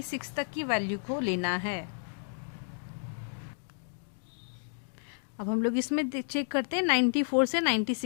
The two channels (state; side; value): silent; right; digital silence